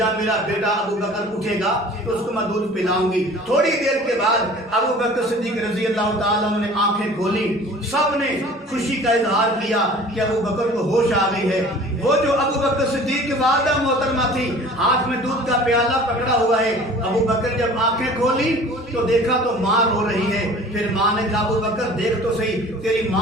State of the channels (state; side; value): normal; both; correlation 0.46